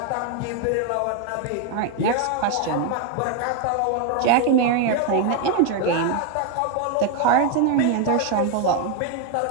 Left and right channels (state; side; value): different; both; correlation 0.01